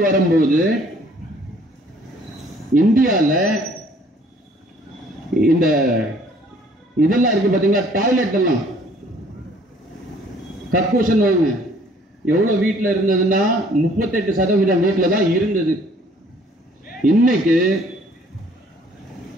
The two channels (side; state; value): both; normal; correlation 0.58